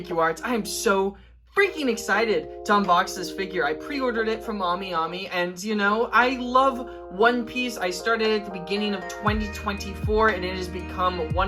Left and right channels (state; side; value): identical; both; correlation 1.00